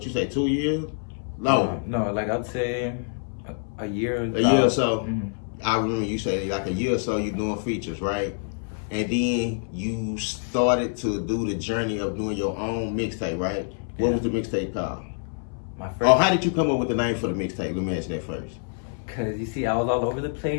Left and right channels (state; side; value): silent; right; 61 dB below the other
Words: you say, 2 years? No, No, like I'd say a year. a year or so. Mm-hmm. I remember you say like a year or so you doing features, right? And then you started to do the journey of doing your own mixtape, right? What was the mixtape called? My first. Oh, how did you come up with the name for the mixtape? Let me ask that first. Cause you see, I was all over the